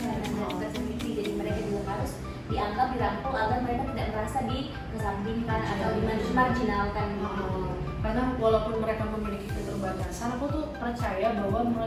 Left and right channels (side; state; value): both; identical; correlation 1.00